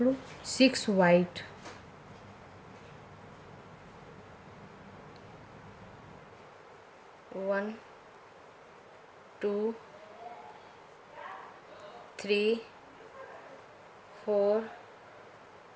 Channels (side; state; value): both; identical; correlation 1.00